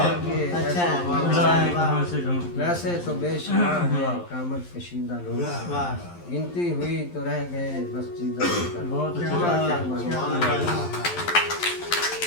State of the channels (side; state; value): right; late; 11 ms